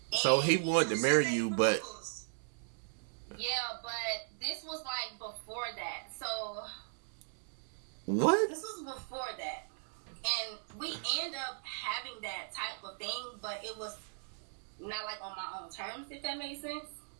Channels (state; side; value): silent; left; digital silence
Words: So he wanted to marry you, but... Yeah, but this was like before that. So... What? This was before that. And we end up having that type of thing, but it was not like on my own terms, if that makes sense.